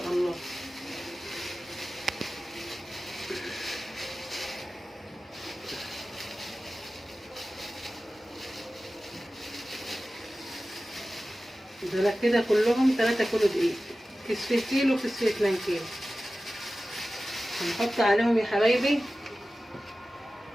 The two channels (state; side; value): normal; both; correlation 0.95